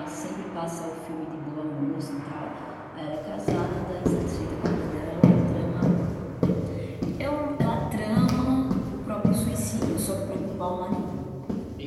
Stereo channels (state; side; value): identical; both; correlation 1.00